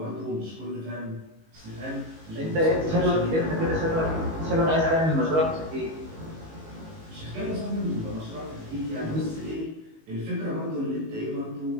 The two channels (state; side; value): late; left; 19 ms